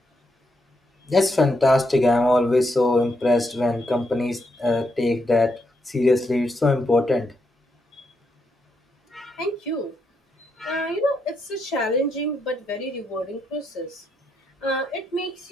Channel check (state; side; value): normal; both; correlation 0.80